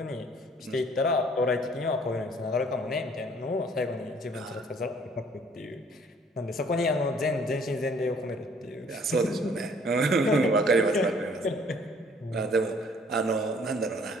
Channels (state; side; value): normal; both; correlation 0.58